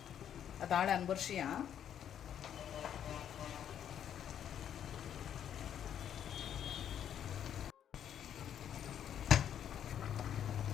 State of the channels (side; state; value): right; quieter; 9.5 dB